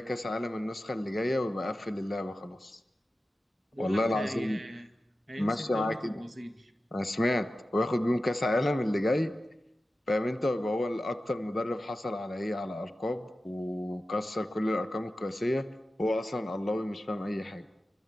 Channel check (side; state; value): both; normal; correlation 0.94